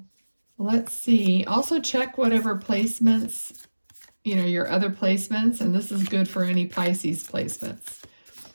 let's see. Also check whatever placements, your other placements, and this is good for any Pisces placements.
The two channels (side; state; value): both; inverted; correlation -1.00